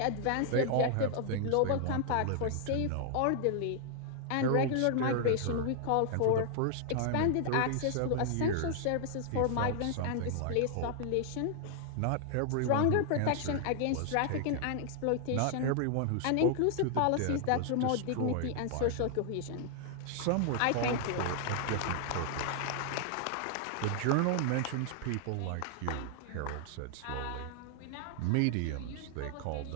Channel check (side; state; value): both; different; correlation 0.00